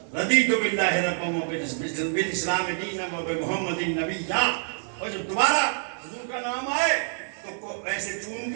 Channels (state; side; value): silent; left; digital silence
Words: رضیت باللہ ربا وبالاسلام دینا وبمحمد نبیا. اور جب دوبارہ حضور کا نام آئے تو ایسے چون